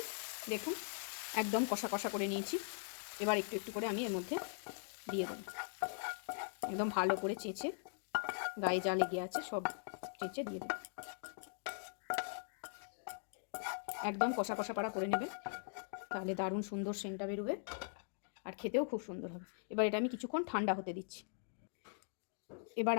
দেখুন একদম কষা কষা করে নিয়েছি। এবার একটু একটু করে আমি এর মধ্যে দিয়ে দেব। একদম ভালো করে চেঁচে গায়ে যা লেগে আছে সব চেঁচে দিয়ে দেব। একদম কষা কষা পাড়া করে নেবে, তাহলে দারুণ সুন্দর সেন্টটা বেরোবে আর খেতেও খুব সুন্দর হবে। এবার এটা আমি কিছুক্ষণ ঠান্ডা হতে দিচ্ছি। এবার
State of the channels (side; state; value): right; silent; digital silence